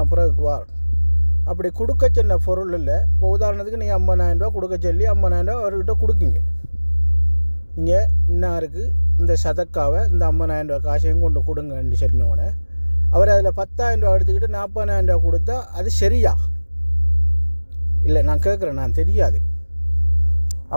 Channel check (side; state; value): both; inverted; correlation -1.00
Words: பிறகு வார். அப்படி கொடுக்க சின்ன பொருள் இல்லை. இப்போ உதாரணத்துக்கு நீங்கள் 50,000 ரூபா கொடுக்க சொல்லி 50,000 ரூபா அவர்கிட்ட கொடுக்குங்க. நீங்கள் இன்னாருக்கு இந்த சதக்காவை, இந்த 50,000 ரூபா காசையும் கொண்டு கொடுங்கன்னு சொன்னோன்னே அவர் அதில் 10,000 ரூபா எடுத்துக்கிட்டு 40,000 ரூபா கொடுத்தா அது சரியா? இல்லை, நான் கேட்குறேன், நான் தெரியாது.